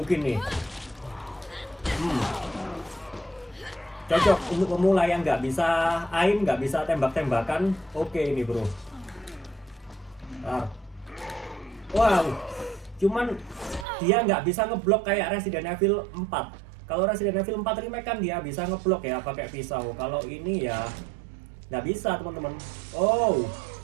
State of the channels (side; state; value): left; drops out; at 13.9 s